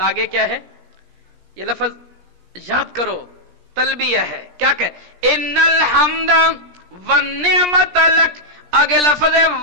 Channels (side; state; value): left; late; 17 ms